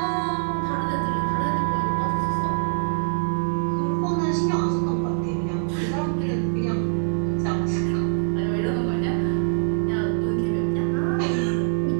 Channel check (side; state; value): left; silent; digital silence